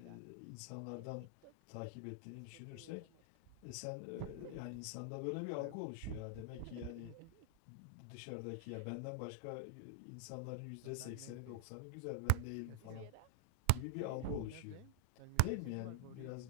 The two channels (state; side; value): different; both; correlation 0.00